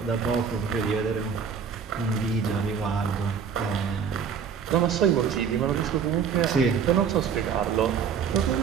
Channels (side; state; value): left; quieter; 6.9 dB